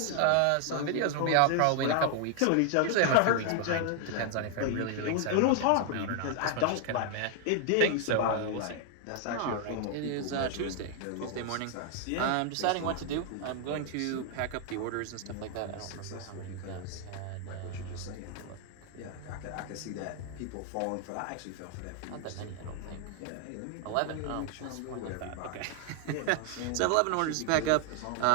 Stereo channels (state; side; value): different; both; correlation 0.00